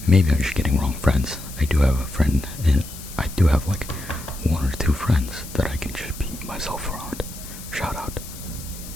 Maybe I'm just getting wrong friends. I do have a friend, and I do have like one or two friends that I can just be myself around. Shout out.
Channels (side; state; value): left; noise; hiss, 14 dB below the sound